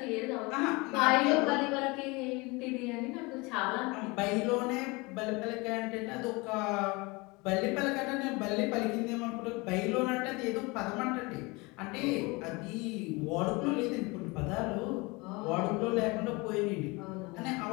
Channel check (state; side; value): quieter; right; 25.6 dB